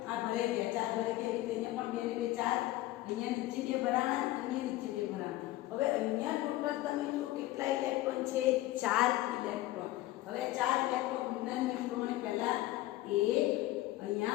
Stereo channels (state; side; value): quieter; right; 16.4 dB